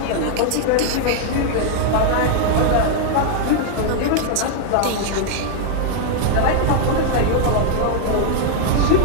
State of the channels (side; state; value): both; different; correlation 0.00